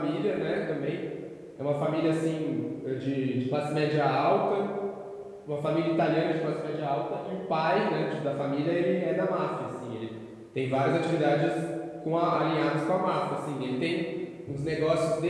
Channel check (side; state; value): both; identical; correlation 1.00